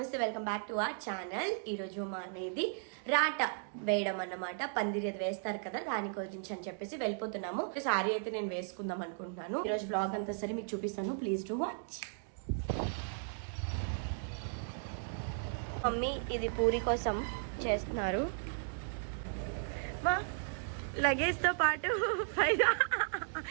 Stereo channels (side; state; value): left; silent; digital silence